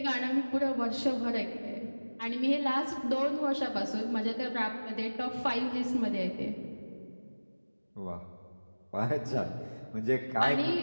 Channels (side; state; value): both; inverted; correlation -1.00